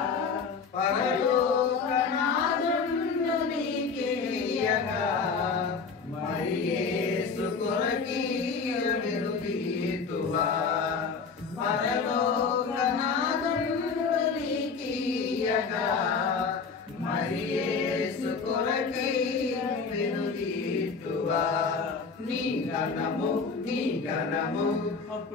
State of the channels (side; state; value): right; quieter; 5.2 dB